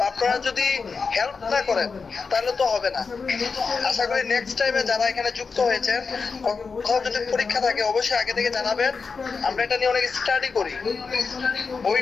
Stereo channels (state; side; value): quieter; right; 4.9 dB